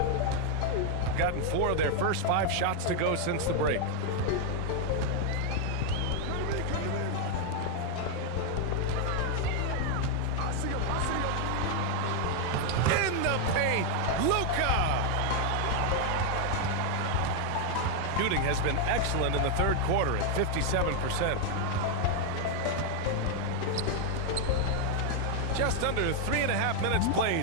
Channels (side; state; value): both; different; correlation 0.00